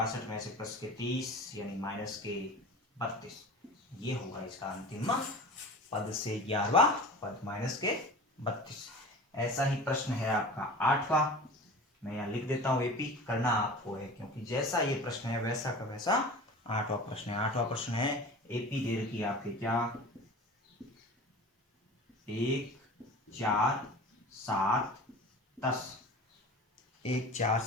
में से +30 यानी -32। ये होगा इसका अंतिम पद से 11वां पद -32। ऐसा ही प्रश्न है आपका 8वां। मैं यहाँ लिख देता हूँ एपी, करना आपको है क्योंकि जैसा ये प्रश्न है वैसा का वैसा 8वां प्रश्न है। 8वां प्रश्न है, एपी दे रखी है आपके क्या 1, 4, 7, 10। 1, 4,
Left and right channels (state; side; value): normal; both; correlation 0.37